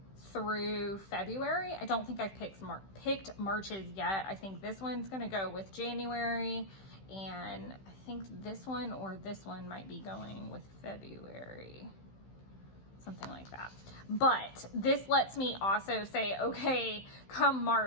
through February. I don't think I've picked March's yet. I think this one's going to go with January, and I think this one or this one might be going with February. something like that. But this lets me also say, okay, come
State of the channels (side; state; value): right; late; 15 ms